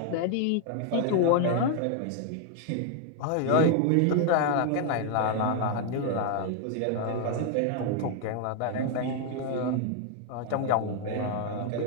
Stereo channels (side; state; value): both; different; correlation 0.00